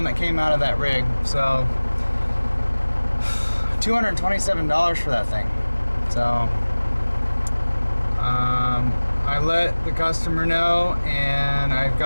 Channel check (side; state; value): both; inverted; correlation -1.00